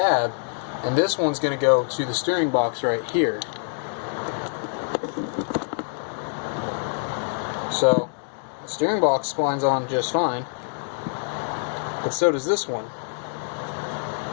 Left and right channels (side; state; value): right; silent; 62 dB below the other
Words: and this one's going to go to the steering box right here. So the steering box splines on just fine, but so does this one.